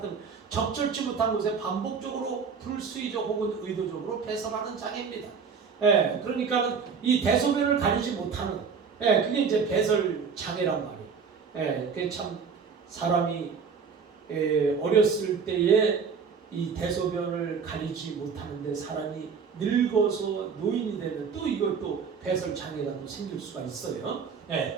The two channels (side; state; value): left; quieter; 5.9 dB